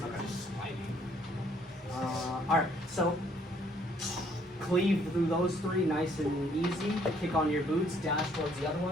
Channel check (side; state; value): both; normal; correlation 0.64